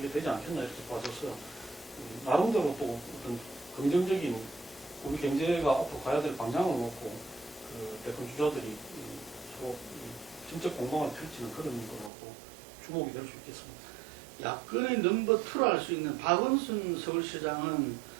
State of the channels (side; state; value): left; drops out; at 12.1 s